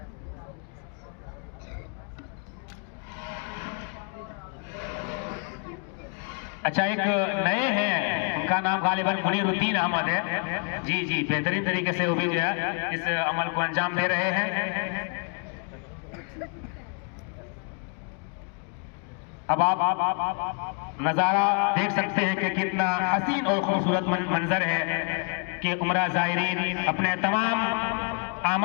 अच्छा, एक नए हैं, उनका नाम गालिबन मुनीरुद्दीन अहमद है। जी, बेहतरीन तरीके से वो भी जो है इस अमल को अंजाम दे रहे हैं। अब आप नज़ारा देख सकते हैं कि कितना हसीन और खूबसूरत मंजर है कि उम्रा ज़ायरीन अपने तमाम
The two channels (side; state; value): right; quieter; 39.3 dB